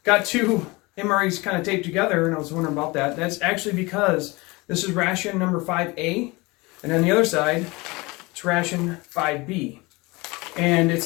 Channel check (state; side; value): quieter; right; 24.1 dB